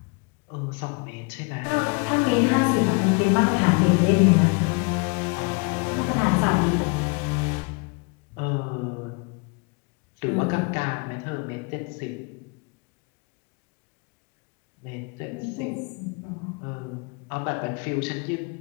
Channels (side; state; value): right; quieter; 31.9 dB